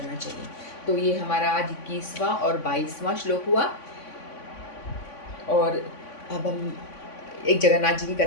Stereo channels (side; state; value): right; late; 3.5 ms